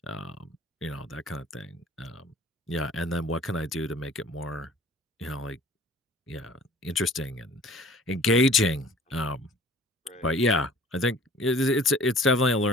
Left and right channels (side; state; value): both; normal; correlation 0.50